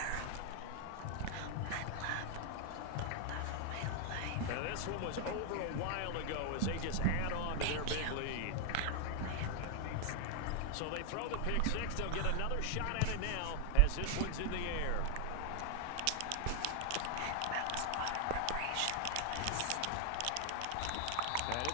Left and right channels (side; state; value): both; different; correlation 0.00